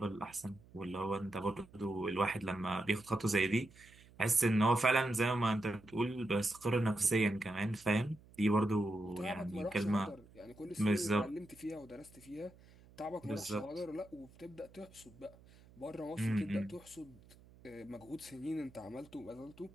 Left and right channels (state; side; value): noise; right; hum, 24 dB below the sound